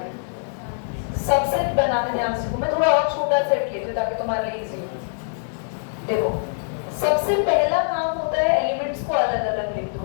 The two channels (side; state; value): right; silent; 57 dB below the other